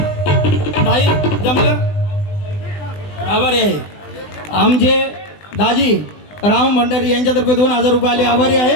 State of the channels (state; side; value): late; right; 20 ms